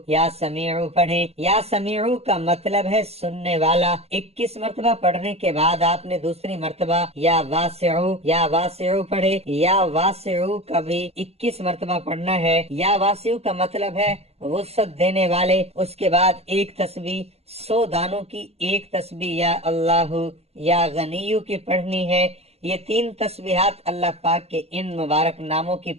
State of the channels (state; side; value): late; left; 0.30 ms